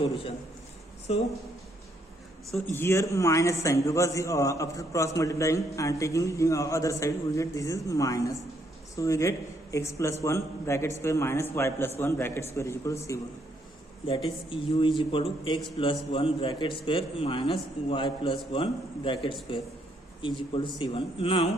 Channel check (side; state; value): both; normal; correlation 0.72